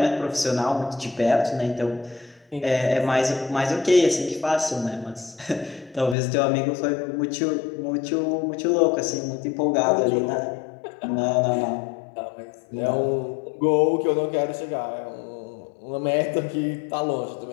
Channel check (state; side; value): drops out; right; at 6.2 s